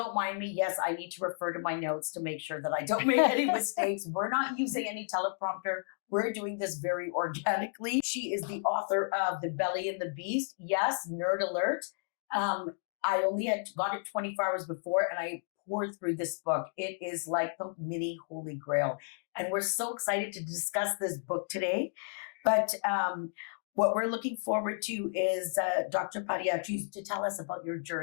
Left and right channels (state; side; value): silent; right; digital silence